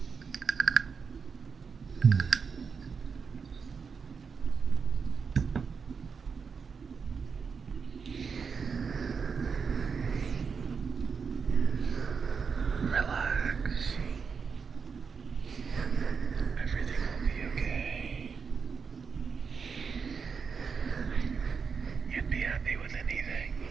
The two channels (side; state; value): left; quieter; 5.7 dB